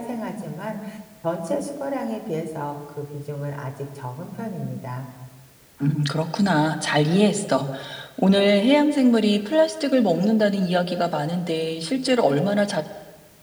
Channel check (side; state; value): both; identical; correlation 1.00